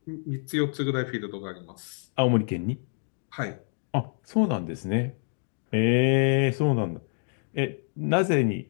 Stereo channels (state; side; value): silent; right; digital silence